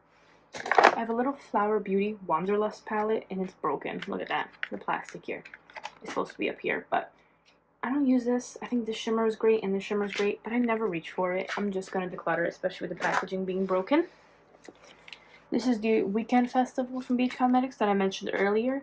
I have a little Flower Beauty Wanderlust palette, and it's broken. Look at that. The plastic here is supposed to be up here, but I don't use this. I think the shimmer is great, and the shimmer is great, but I never reach for it. I'm just going to declutter it, especially with the packaging being broken. This is the Weekend Festival from BH Cosmetics that I mentioned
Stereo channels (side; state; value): both; identical; correlation 1.00